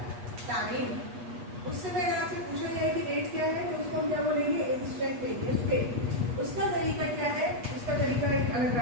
टाइम, उससे पहले आपसे पूछा जाए कि रेट क्या है तो उसको हम क्या बोलेंगे, इंस्टेंटेनियस रेट। उसका तरीका क्या है, उसका तरीका एक अलग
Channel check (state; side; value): late; left; 8.3 ms